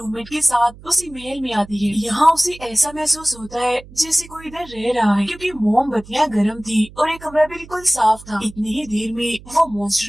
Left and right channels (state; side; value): noise; right; hum, 20 dB below the sound